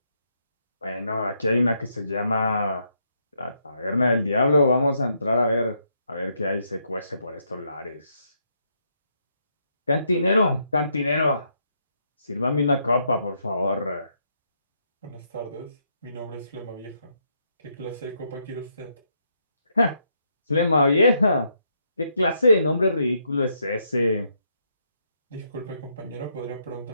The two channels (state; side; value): inverted; both; correlation -0.76